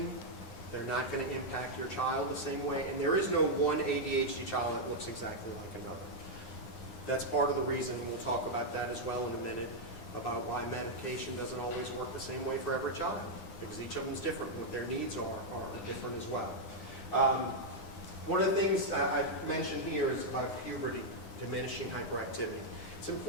They're not going to impact your child the same way. And there is no one ADHD child that looks exactly like another. That's part of the reason, we'll talk about that as well in a minute, about why medication doesn't always work the same way for every child. Because each of them is different. What their needs are different as well. One of the things I've mentioned here is about puberty, diminishing hyperactivity. It's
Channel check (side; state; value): right; late; 9.6 ms